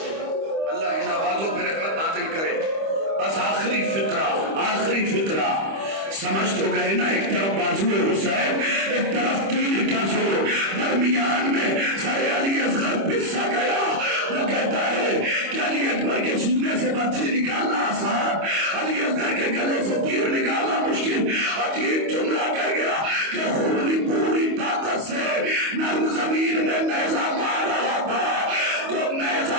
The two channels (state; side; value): late; left; 25 ms